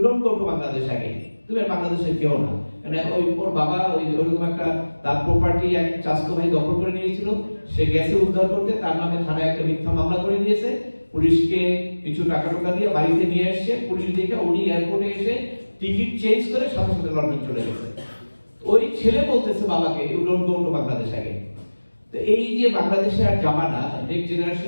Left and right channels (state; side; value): inverted; both; correlation -1.00